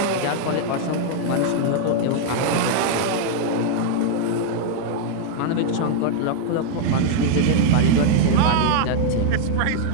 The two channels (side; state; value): both; different; correlation 0.00